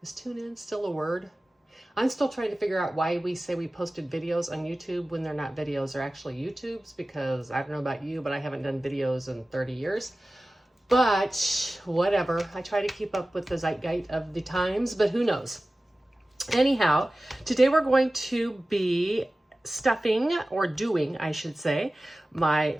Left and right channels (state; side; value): normal; both; correlation 0.96